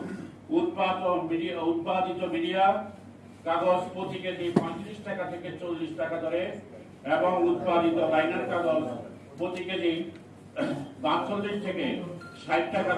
উৎপাদিত মিডিয়া কাগজ প্রতি কেজি 35 টাকা থেকে 40 টাকা দরে এবং উৎপাদিত লাইনার কাগজ প্রতি কেজি 42 থেকে 60 টাকা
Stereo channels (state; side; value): identical; both; correlation 1.00